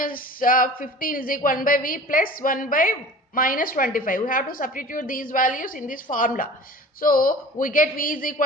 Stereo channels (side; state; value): both; normal; correlation 0.41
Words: 15 is equal to 1 by v plus 1 by minus 25. We have to substitute these values in this formula. So we get v is